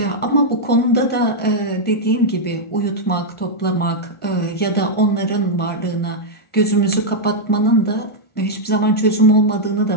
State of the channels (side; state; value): right; late; 1.4 ms